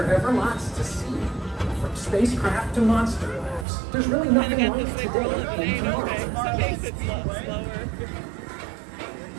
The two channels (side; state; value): left; drops out; at 3.7 s